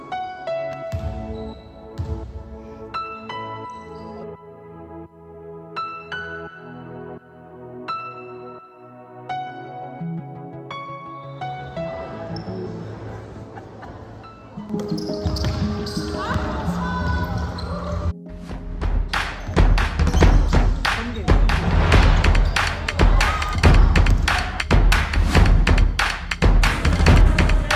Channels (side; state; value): both; identical; correlation 1.00